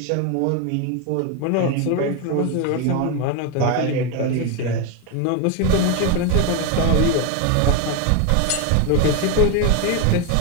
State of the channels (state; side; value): different; both; correlation 0.02